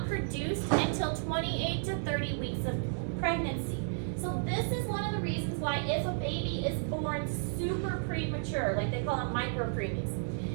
produced until 28 to 30 weeks of pregnancy. So this is one of the reasons why if a baby is born super premature, like they call them micropreemies,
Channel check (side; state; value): left; silent; digital silence